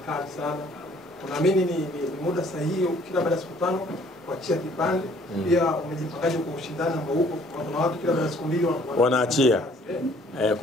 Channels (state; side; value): normal; both; correlation 0.59